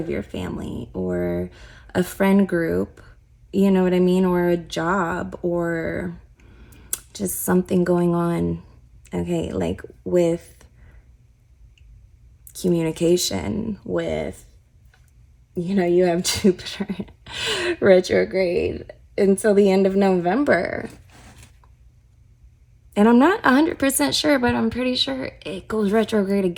your family or a friend group, you know what I mean, or a job, or just something going on, okay, like with communication, with, you know, you have Jupiter retrograde until the end of November. And I'm not 100% sure, but I'm pretty sure it goes retrograde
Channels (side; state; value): both; identical; correlation 1.00